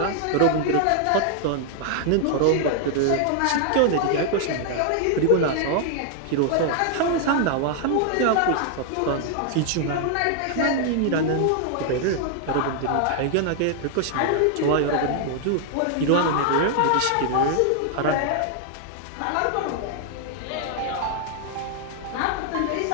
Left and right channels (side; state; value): both; different; correlation 0.00